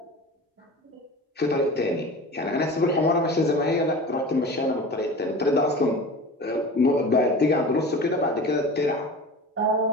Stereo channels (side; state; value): both; normal; correlation 0.35